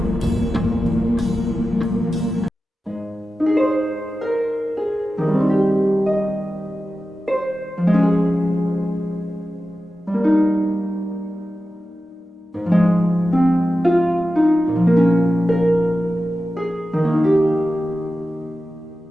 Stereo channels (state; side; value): normal; both; correlation 0.93